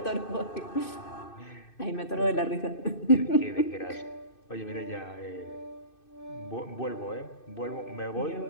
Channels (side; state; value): right; late; 2.6 ms